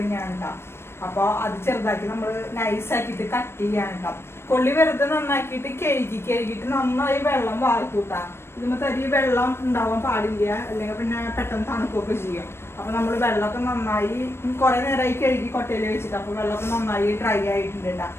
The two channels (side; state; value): right; late; 0.12 ms